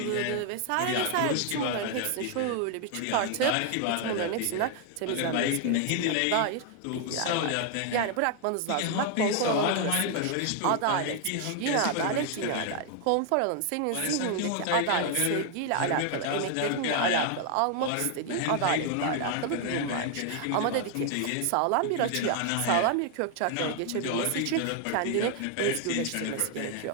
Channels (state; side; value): different; both; correlation 0.00